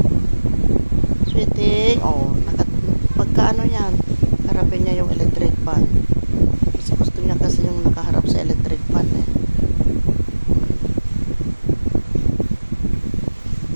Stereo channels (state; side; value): inverted; both; correlation -1.00